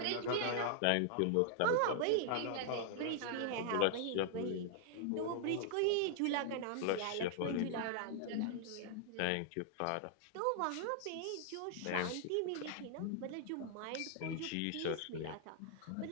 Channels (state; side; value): different; both; correlation 0.00